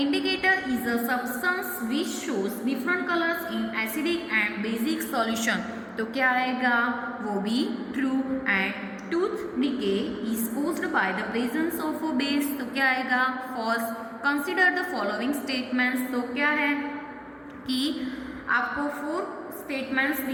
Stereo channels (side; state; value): both; identical; correlation 1.00